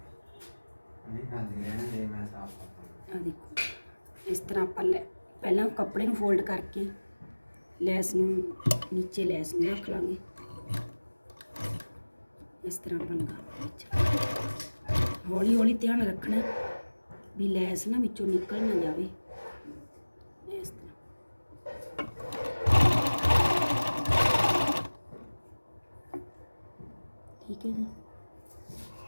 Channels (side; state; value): both; inverted; correlation -1.00